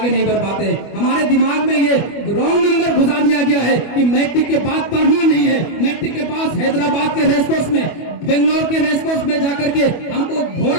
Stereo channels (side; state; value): right; late; 25 ms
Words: नहीं बढ़ पाते हैं। हमारे दिमाग में ये रॉन्ग नंबर घुसा दिया गया है कि मैट्रिक के बाद पढ़ना नहीं है। मैट्रिक के बाद हैदराबाद के रेसकोर्स में, बेंगलोर के रेसकोर्स में जाकर के हमको